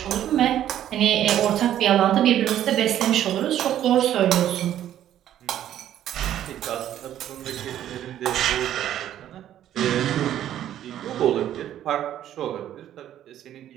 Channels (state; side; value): quieter; left; 11.5 dB